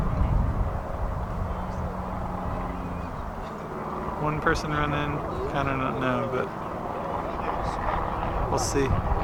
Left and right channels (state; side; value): identical; both; correlation 1.00